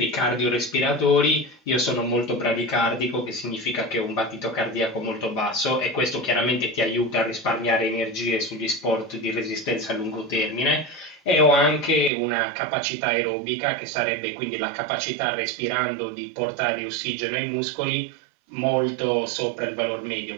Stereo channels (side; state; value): left; drops out; at 12.1 s